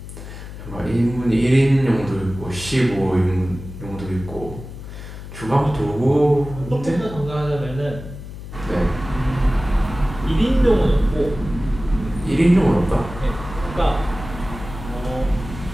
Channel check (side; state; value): left; noise; hum, 12 dB below the sound